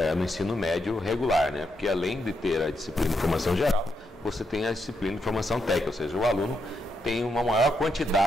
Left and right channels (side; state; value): both; normal; correlation 0.81